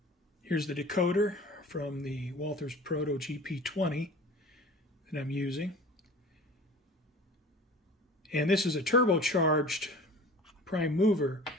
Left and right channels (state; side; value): normal; both; correlation 0.41